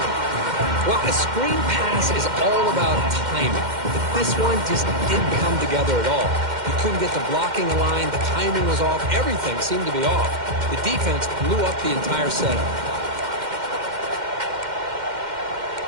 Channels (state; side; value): late; left; 2.1 ms